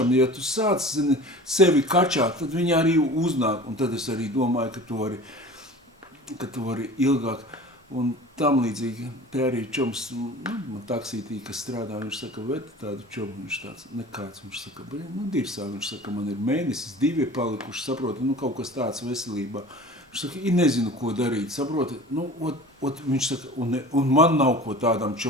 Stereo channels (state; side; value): normal; both; correlation 0.40